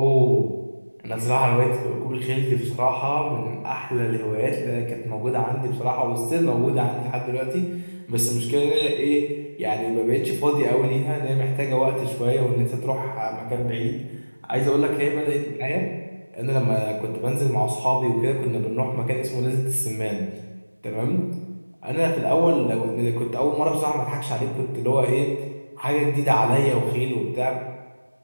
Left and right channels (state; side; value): inverted; both; correlation -1.00